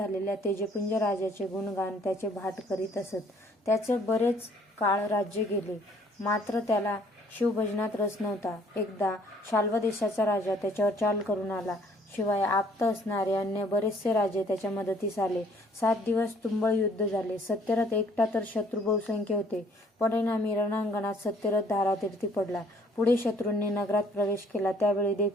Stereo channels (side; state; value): both; normal; correlation 0.60